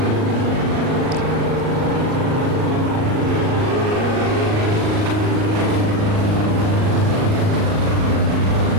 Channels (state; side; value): late; left; 38 ms